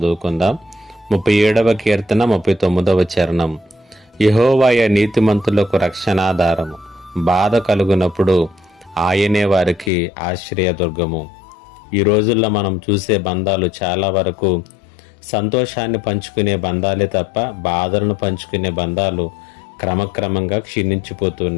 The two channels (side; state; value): right; drops out; at 9.9 s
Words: 37వ కీర్తన 39వ చరణం. యెహోవాయే నీతిమంతులకు రక్షణాధారము, బాధ కలుగునప్పుడు ఆయనే వారికి ఆశ్రయదుర్గము. ఈ రోజుల్లో మనం చూసే బంధాలు చాలా వరకు సంతోషాన్ని పంచుకునే బంధాలే తప్ప బాధలను పంచుకునే బంధాలు క్రమక్రమంగా